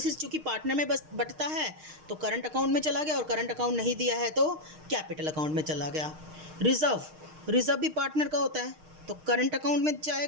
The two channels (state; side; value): late; left; 6.5 ms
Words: चूँकि पार्टनर में बस बटता है तो करंट अकाउंट में चला गया, और करंट अकाउंट नहीं दिया है तो कैपिटल अकाउंट में चला गया। रिजर्व, रिजर्व भी पार्टनर का होता है, तो करंट अकाउंट में